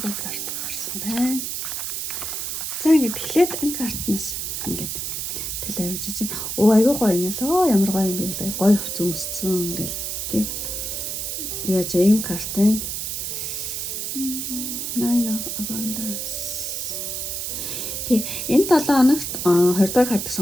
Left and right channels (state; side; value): noise; right; hiss, 3 dB below the sound